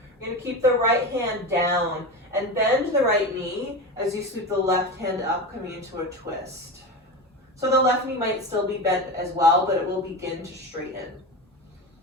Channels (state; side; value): normal; both; correlation 0.24